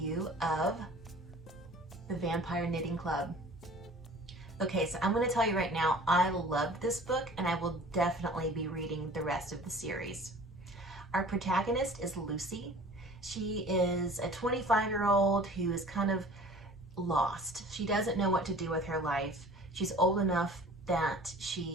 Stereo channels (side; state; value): both; normal; correlation 0.46